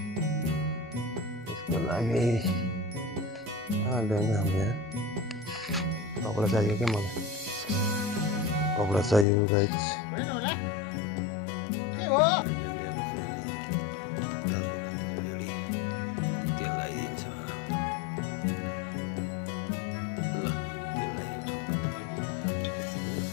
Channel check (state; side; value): drops out; right; at 9.2 s